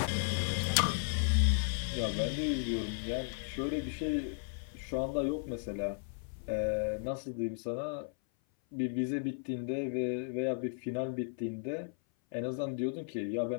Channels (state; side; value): silent; right; 54 dB below the other